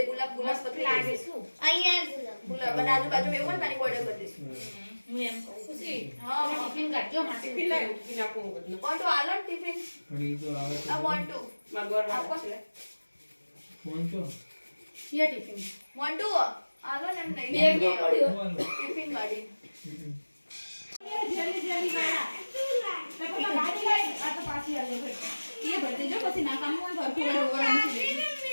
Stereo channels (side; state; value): both; inverted; correlation -1.00